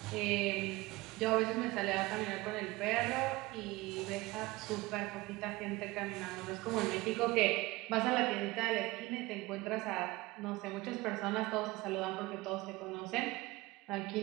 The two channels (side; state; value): left; quieter; 20.9 dB